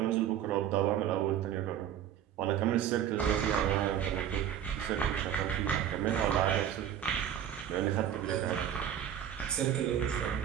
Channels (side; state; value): left; quieter; 9.9 dB